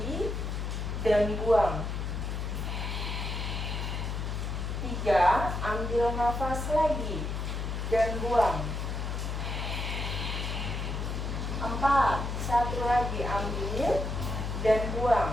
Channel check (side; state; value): left; noise; hum, 3 dB below the sound